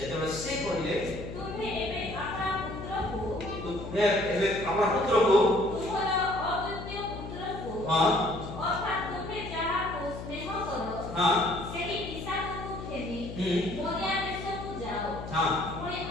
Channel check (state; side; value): noise; left; hum, 9 dB below the sound